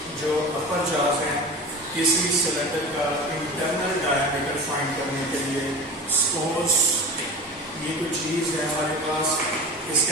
जो अपर जाज हैं किसी सिलेंडर का इंटरनल डायमीटर फाइंड करने के लिए। सपोज ये कोई चीज़ है हमारे पास,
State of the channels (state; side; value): normal; both; correlation 0.33